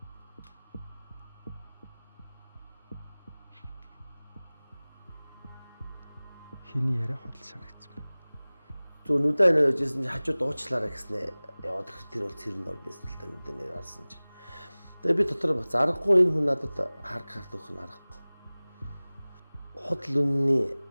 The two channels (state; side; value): inverted; both; correlation -1.00